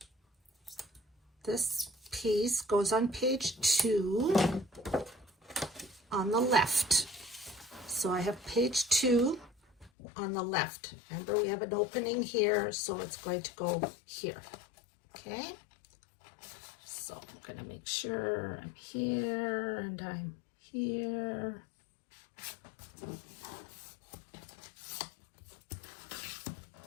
this piece goes on page 2 on the left. So I have page 2 on the left. Remember, we have an opening here, so it's going to go here. Okay? So I'm going to make sure I'm here and I'm here.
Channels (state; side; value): drops out; right; at 9.9 s